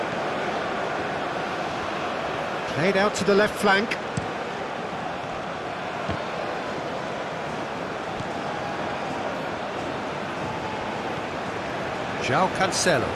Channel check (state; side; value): identical; both; correlation 1.00